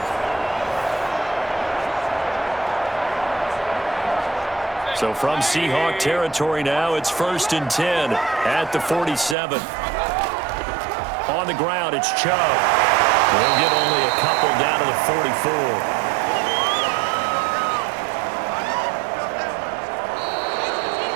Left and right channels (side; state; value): left; drops out; at 9.3 s